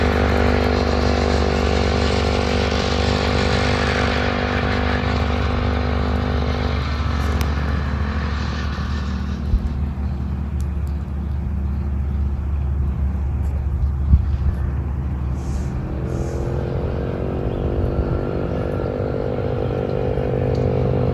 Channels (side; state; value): both; identical; correlation 1.00